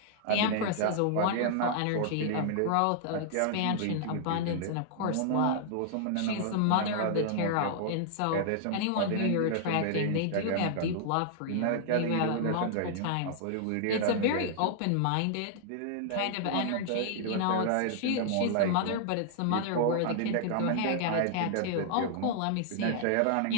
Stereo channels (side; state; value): both; different; correlation -0.01